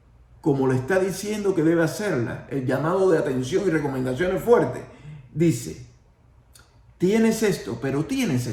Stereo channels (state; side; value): identical; both; correlation 1.00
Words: como le está diciendo que debe hacerla, el llamado de atención y recomendaciones fuertes, dice, tienes esto, pero tienes